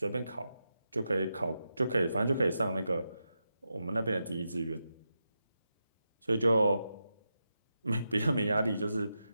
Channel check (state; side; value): inverted; both; correlation -0.88